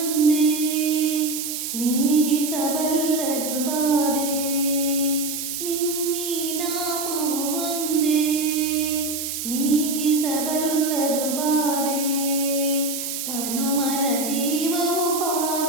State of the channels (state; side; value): noise; right; hiss, 4 dB below the sound